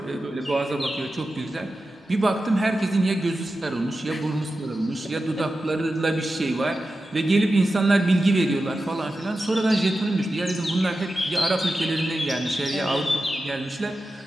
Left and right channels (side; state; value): both; normal; correlation 0.92